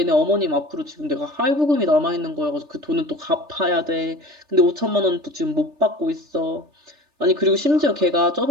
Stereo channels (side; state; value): left; late; 3.4 ms